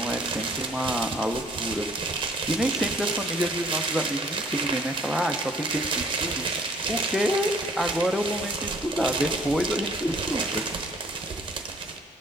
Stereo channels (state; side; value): normal; both; correlation 0.58